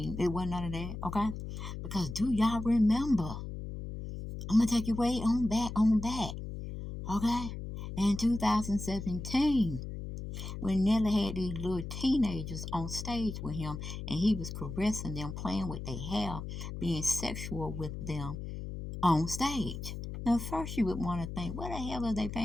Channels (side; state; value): left; noise; hum, 7 dB below the sound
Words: It wasn't none of that, okay? Because do y'all remember? I'm going to take you way on back, okay? In 2017, when Nelly had these little teenagers on stage with him and he was caressing them, playing with their hair, being sexual with them on stage. Now, first you would want to think, what the hell are their